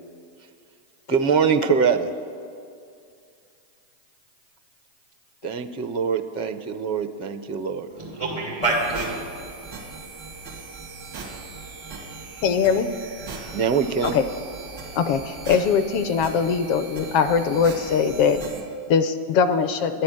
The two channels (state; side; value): late; right; 7.4 ms